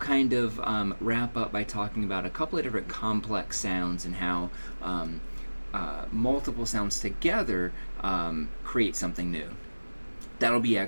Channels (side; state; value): both; inverted; correlation -1.00